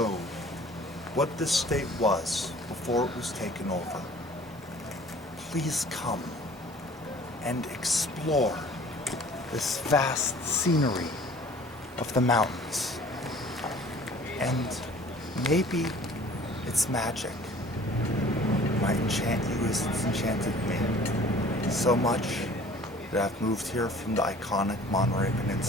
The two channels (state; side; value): normal; both; correlation 0.50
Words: what this state was before it was taken over, please come and explore this vast scenery of the mountains. And maybe its magic might enchant you as it's enchanted me. So much that I've moved here from the iconic Monterey